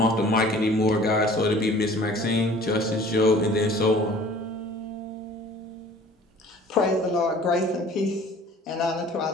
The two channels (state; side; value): normal; both; correlation 0.50